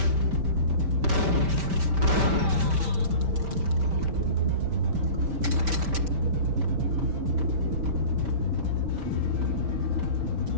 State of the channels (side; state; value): left; late; 5.1 ms